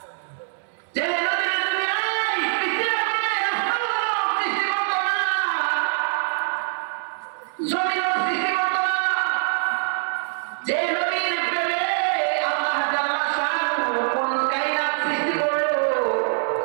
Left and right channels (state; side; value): silent; left; digital silence